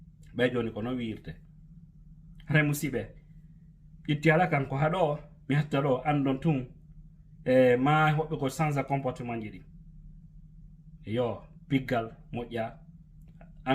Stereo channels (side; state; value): both; identical; correlation 1.00